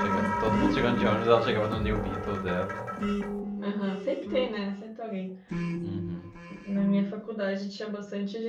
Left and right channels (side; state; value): both; identical; correlation 1.00